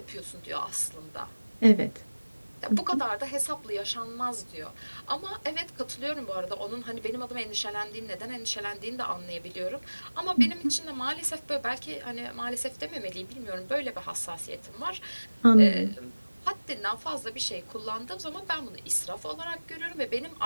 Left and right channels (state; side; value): inverted; both; correlation -1.00